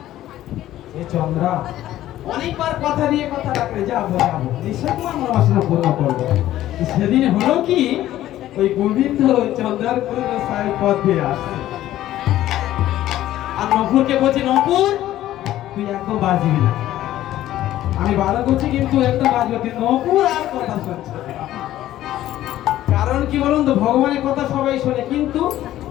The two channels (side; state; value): right; quieter; 13.7 dB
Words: এ চন্দ্রা অনেকবার কথা দিয়ে কথা রাখলে যাবো যাবো, নিশ্চয় তোমার মনোবাসনা পূর্ণ করবো। সেদিন হলো কি, ওই গোবিন্দ চন্দ্রার সাহেব পথ দিয়ে আসছে, আর নপুরকে বলছে নপুর তুই একদম বাজবি না। আমি ভালো করছি কিন্তু একদম বাজবে, কিন্তু নপুর আর কথা শুনছে না। কারণ কি বলুন তো, ভগবানের কথা সবাই শোনে কিন্তু